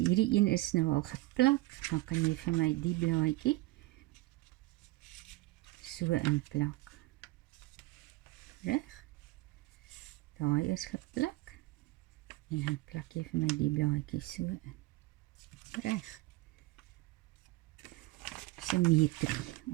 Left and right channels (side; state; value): left; quieter; 20.5 dB